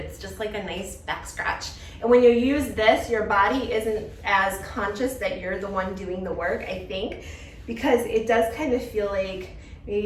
just like a nice back scratch. And when you use this, your body isn't as conscious that you're the one doing the work, I think, because it does kind of feel like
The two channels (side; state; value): both; identical; correlation 1.00